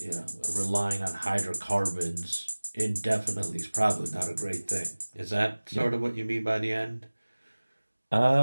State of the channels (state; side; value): inverted; both; correlation -1.00